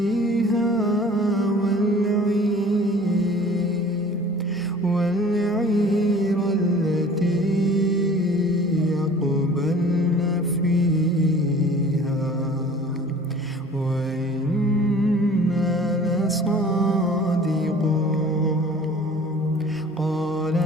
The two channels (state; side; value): normal; both; correlation 0.47